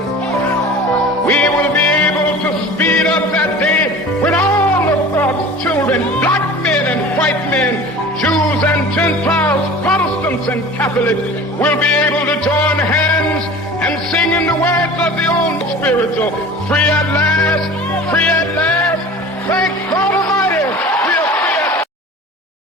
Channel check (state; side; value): normal; both; correlation 0.40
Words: we will be able to speed up that day when all of God's children, black men and white men, Jews and Gentiles, Protestants and Catholics, will be able to join hands and sing in the words of the old spiritual, free at last,